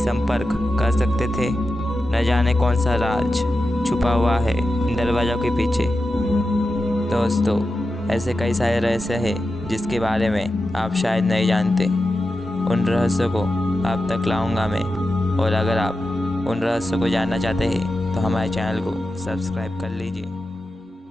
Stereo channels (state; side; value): normal; both; correlation 0.91